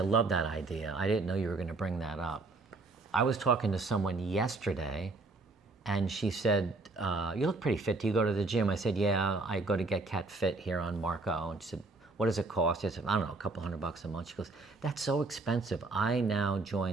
that idea. I didn't know you were going to bring that up. I was talking to someone yesterday, and she said, you look pretty fit. Do you go to the gym? I said, yeah, I go to Get Cat Fit here on Marco. And she said, what does it cost? I said, I don't know, a couple $100 a month. She goes, that's so expensive. I now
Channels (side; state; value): left; quieter; 3.5 dB